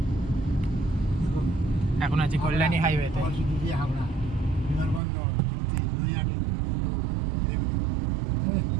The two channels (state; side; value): drops out; left; at 5.0 s